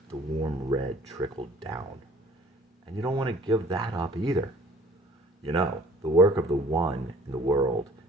the warm red trickle down. And you don't want to give that up either. You know, the work of the one in the world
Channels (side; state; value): both; normal; correlation 0.51